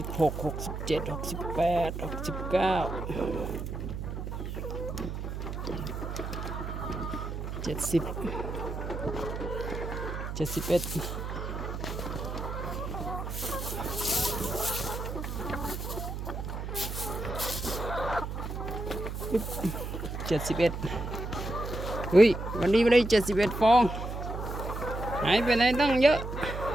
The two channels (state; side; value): noise; right; hum, 5 dB below the sound